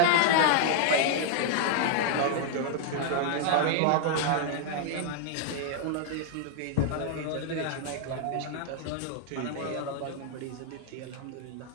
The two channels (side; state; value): both; different; correlation 0.00